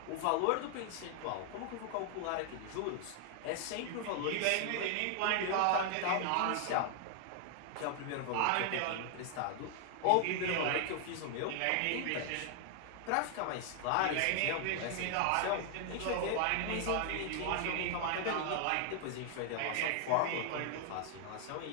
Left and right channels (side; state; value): both; different; correlation 0.00